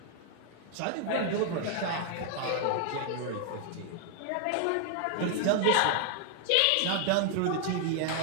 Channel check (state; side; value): different; both; correlation 0.00